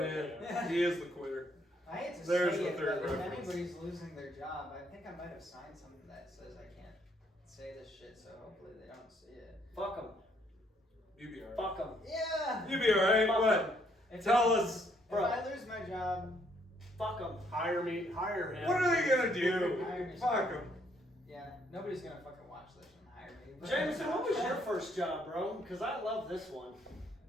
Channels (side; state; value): both; normal; correlation 0.69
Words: Yeah, he is the quitter. I hate to There's say the it, third but if reference. anybody's losing their job, I think I might have signed something that says I can't say this shit, so hopefully they don't see it. Fuck them. You be alright. Fuck them. Yeah! You be alright. Fuck What? If Tell I- us. If Bro. I lose my job, Fuck them. Hire me. Hire him. What are they gonna do? Hire me. Fuck them. yeah, nobody's gonna fucking watch this and hire me. but- Jameson, what was your first job, bro? Because I love this one.